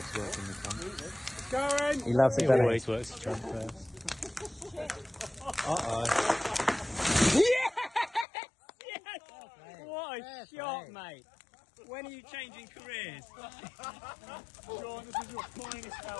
working the front. Going! He loves it, He doesn't always works the trunk first. Uh-oh. Yes! Yes! What a shot, mate. When are you changing careers? Sean, this is your finest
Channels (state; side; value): drops out; right; at 8.2 s